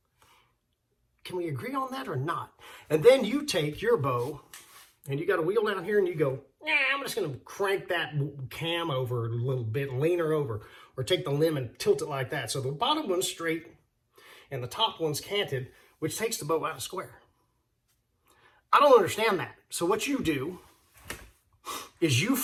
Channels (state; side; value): identical; both; correlation 1.00